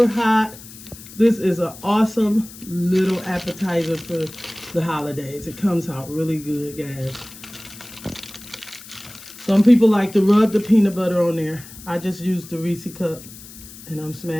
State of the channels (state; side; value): noise; left; hiss, 17 dB below the sound